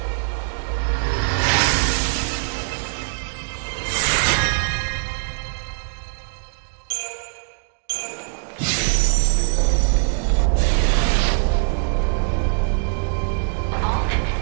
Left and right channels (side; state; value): left; silent; digital silence